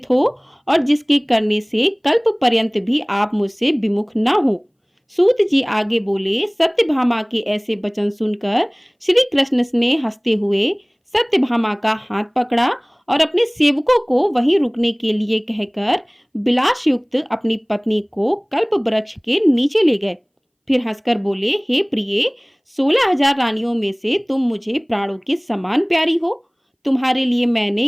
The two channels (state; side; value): identical; both; correlation 1.00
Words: हो और जिसके करने से कल्प पर्यंत भी आप मुझसे विमुख ना हो। सूत जी आगे बोले, सत्यभामा के ऐसे वचन सुनकर श्री कृष्ण ने हंसते हुए सत्यभामा का हाथ पकड़ा और अपने सेवकों को वहीं रुकने के लिए कहकर विलास युक्त अपनी पत्नी को कल्प वृक्ष के नीचे ले गए। फिर हंसकर बोले, हे प्रिय, 16,000 रानियों में से तुम मुझे प्राणों के समान प्यारी हो। तुम्हारे लिए मैंने